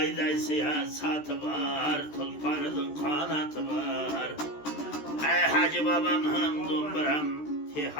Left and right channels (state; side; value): late; right; 13 ms